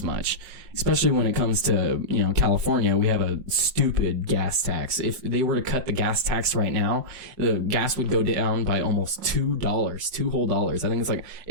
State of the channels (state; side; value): late; left; 5.6 ms